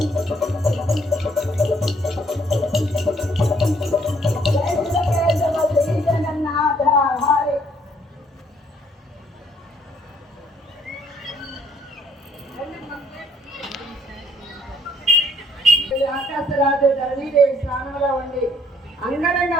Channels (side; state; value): both; normal; correlation 0.65